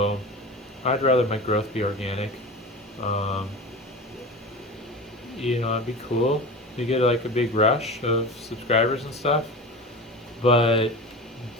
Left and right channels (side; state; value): both; normal; correlation 0.31